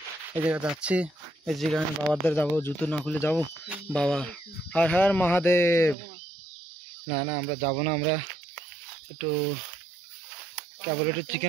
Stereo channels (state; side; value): drops out; left; at 6.0 s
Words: এই জায়গা যাচ্ছি, এই জায়গায় বাবার যাবো, জুতো না খুলে যাবো। বাবা হর হর মহাদেব। না আমরা যাবো না, আমরা একটু কেবল একটু